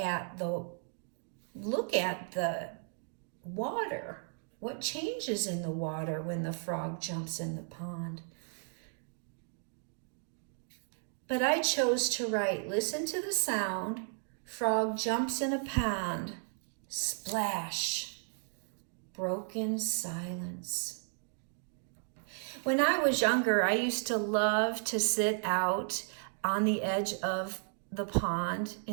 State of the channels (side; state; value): left; silent; 55 dB below the other